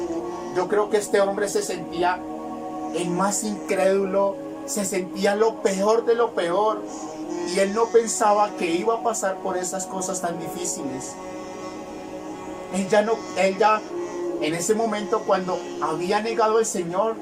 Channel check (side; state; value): both; identical; correlation 1.00